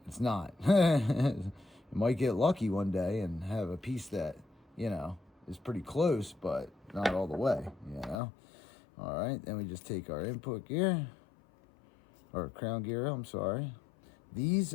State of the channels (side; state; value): right; drops out; at 8.2 s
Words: it's not. You might get lucky one day and have a piece that, you know, is pretty close, but not all the way, you know. All right, then we just take our input gear, or crown gear, I'm sorry.